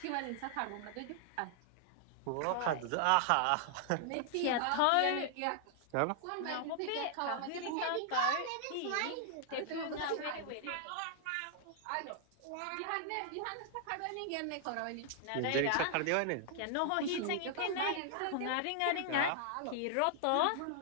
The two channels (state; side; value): different; both; correlation 0.00